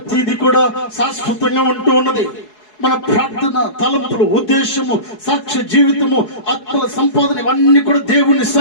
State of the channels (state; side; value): late; right; 4.7 ms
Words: కూడా శాశ్వతంగా ఉంటూ ఉన్నది. మన ప్రార్థన, తలంపులు, ఉద్దేశము, సాక్ష్య జీవితము, ఆత్మల సంపాదన, ఇవన్నీ కూడా దేవుని